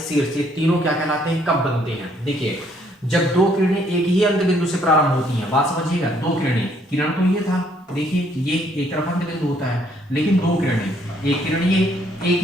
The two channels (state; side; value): normal; both; correlation 0.67